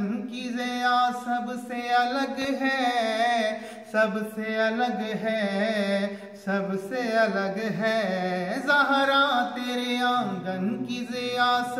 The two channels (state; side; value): identical; both; correlation 1.00